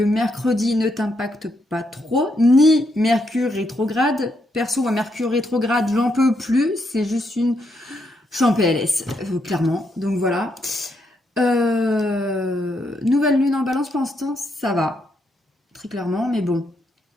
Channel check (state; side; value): normal; both; correlation 0.78